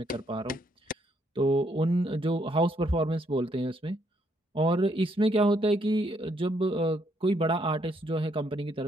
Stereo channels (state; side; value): normal; both; correlation 0.72